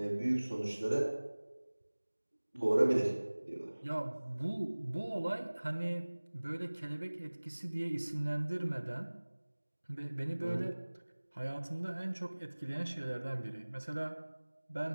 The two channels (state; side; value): inverted; both; correlation -1.00